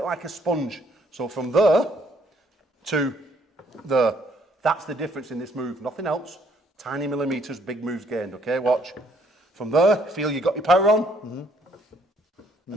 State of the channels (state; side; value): normal; both; correlation 0.66